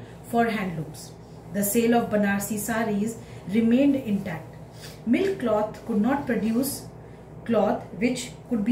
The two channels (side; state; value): both; identical; correlation 1.00